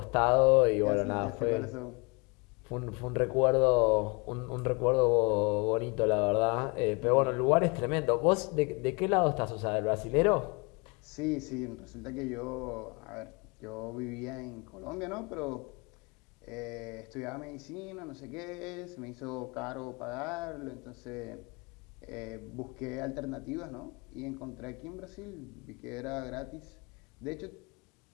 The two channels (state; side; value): quieter; right; 29.5 dB